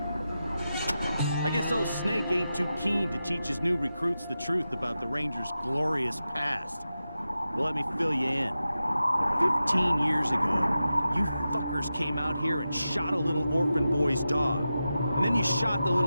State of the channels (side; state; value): both; inverted; correlation -0.92